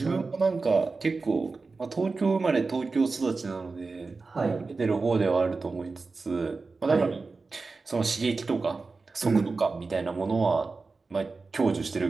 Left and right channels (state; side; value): quieter; left; 4.0 dB